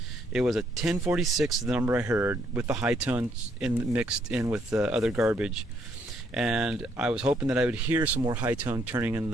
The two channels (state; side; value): normal; both; correlation 0.70